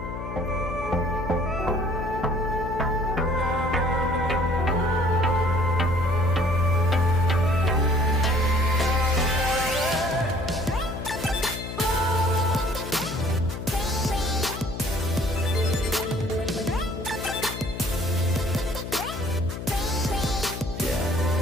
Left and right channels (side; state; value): left; noise; hum, 8 dB below the sound